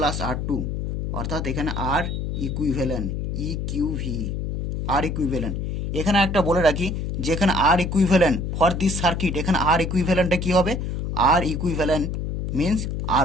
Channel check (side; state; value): left; noise; hum, 3 dB below the sound